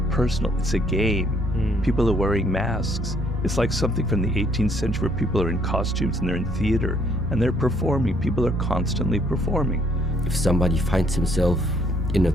personal, it's a game. People are wearing masks. It's like something from the 18th century where people are in costumes and they're in theater and they're performing. People are constantly performing. If somebody finds himself in a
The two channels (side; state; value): both; normal; correlation 0.66